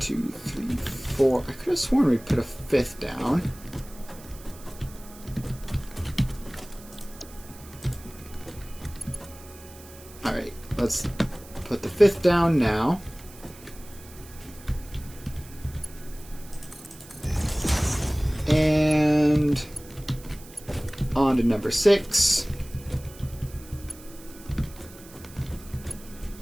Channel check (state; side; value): noise; right; hiss, 20 dB below the sound